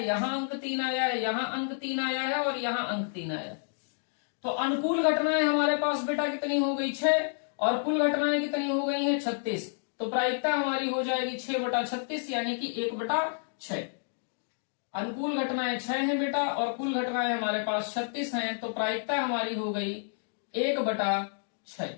यहाँ अंक 3 आया है, यहाँ अंक 3 आया है और यहाँ अंक 3 आया है। तो अनुकूल घटनाएं हमारे पास बेटा कितनी हो गई, 6, और कुल घटनाएं कितनी हो गई हैं, 36। तो प्रायिकता हमारी हो जाएगी 6/36, यानी कि 1/6। अनुकूल घटनाएं 6 हैं बेटा और कुल घटनाएं हमारे पास 36 हैं। तो प्रायिकता हमारी हो गई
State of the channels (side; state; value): right; silent; digital silence